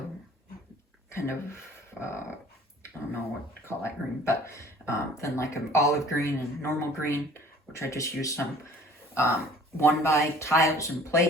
kind of, I don't know what to call that green, but then like an olive green and normal green, which I just used some 1x tiles and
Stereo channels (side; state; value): both; normal; correlation 0.50